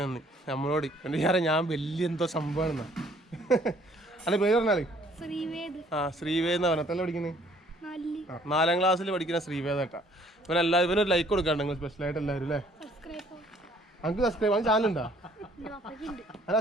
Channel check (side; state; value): both; normal; correlation 0.60